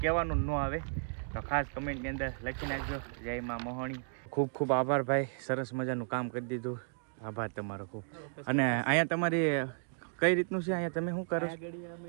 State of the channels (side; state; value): left; silent; digital silence